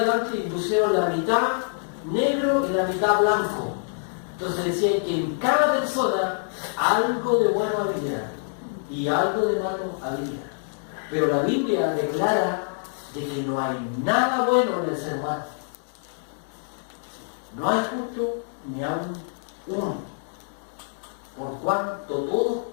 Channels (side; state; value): right; silent; digital silence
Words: y pusieron la mitad negro y la mitad blanco. Entonces decían que en cada persona algo de bueno había y algo de malo había. Pero la Biblia declara de que no hay nada bueno en el ser humano. No hay justo ni aún uno. Por cuanto todos